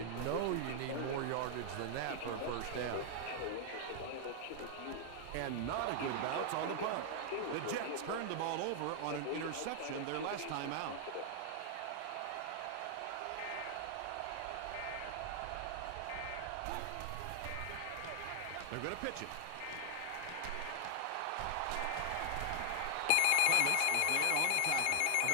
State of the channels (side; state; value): both; different; correlation 0.00